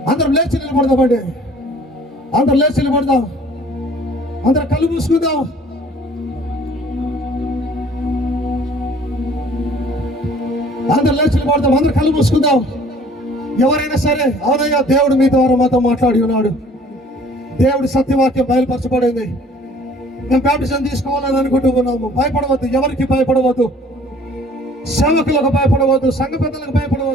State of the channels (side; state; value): both; normal; correlation 0.53